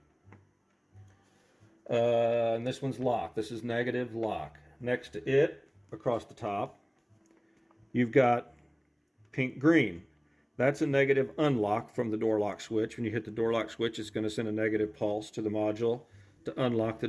And this one's lock. This is negative lock. Next to it, across the top, you've got pink green. That's a negative unlock from the door lock switch. When you hit the door lock switch, it's going to send a negative pulse to the module to unlock the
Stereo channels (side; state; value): both; identical; correlation 1.00